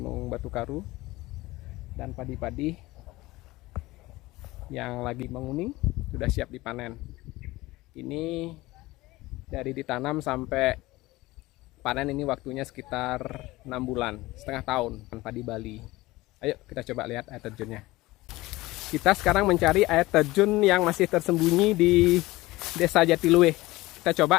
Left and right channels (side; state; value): right; quieter; 19.5 dB